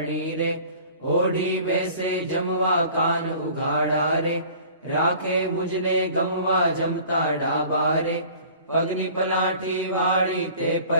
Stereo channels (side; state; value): both; inverted; correlation -0.47